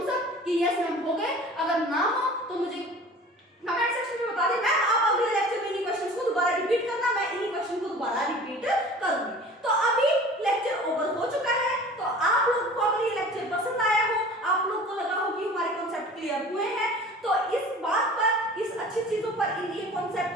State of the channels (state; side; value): normal; both; correlation 0.43